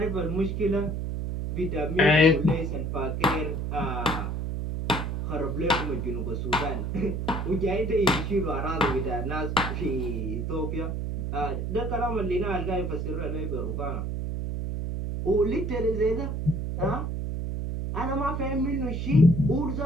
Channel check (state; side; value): noise; right; hum, 2 dB below the sound